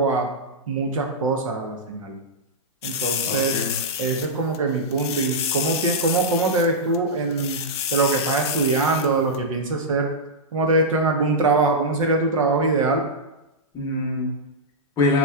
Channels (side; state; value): both; normal; correlation -0.09